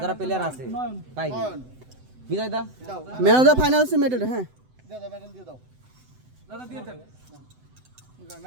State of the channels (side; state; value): left; late; 7.9 ms